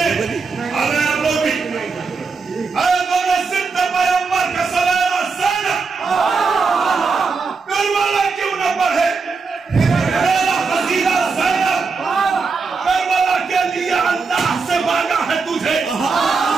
अरे आप लोग भी, अरे दोनों सिद्ध पैगंबर का सवेरा ज़ैनब करबला क्यों न पढ़े? मेरा फजीला ज़ैनब करबला के लिए अल्लाह से मांगा है तुझे,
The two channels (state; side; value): quieter; left; 4.7 dB